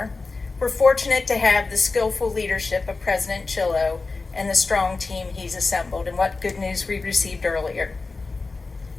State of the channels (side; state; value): right; quieter; 3.8 dB